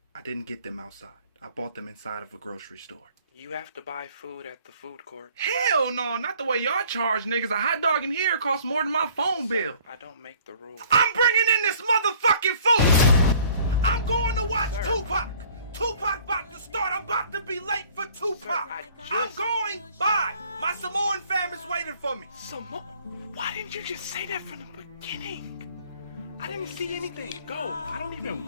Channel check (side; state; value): both; inverted; correlation -0.55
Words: I didn't get them outside. I bought them inside of a grocery store. You have to buy food at the food court. Hell no, not the way y'all charge niggas. A hot dog in here costs more than my phone bill. I don't make the rules. I'm bringing in this motherfucking food! I'm going to watch Sir. Tupac! Tupac about to start. I'm about to be late for Tupac. I I'm just- going. Bye. My Samoan fam is waiting for me. Why didn't you just say that from the beginning? I didn't see anything. Go. I don't even